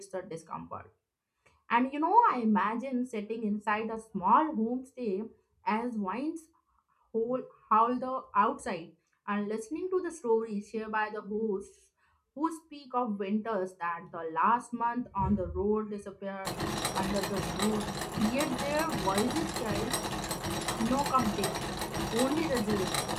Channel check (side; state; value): both; identical; correlation 1.00